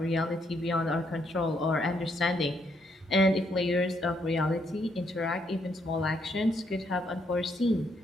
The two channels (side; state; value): both; normal; correlation 0.74